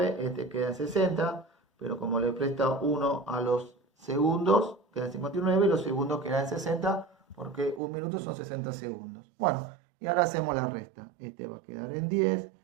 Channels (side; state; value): left; drops out; at 7.8 s